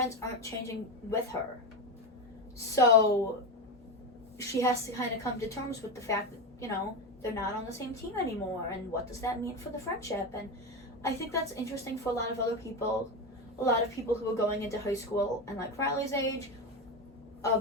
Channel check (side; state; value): both; normal; correlation 0.15